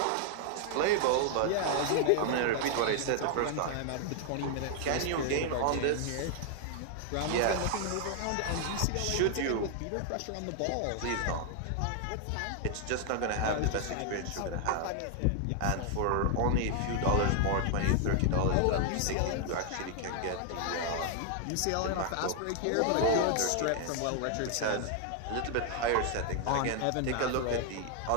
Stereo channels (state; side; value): different; both; correlation 0.00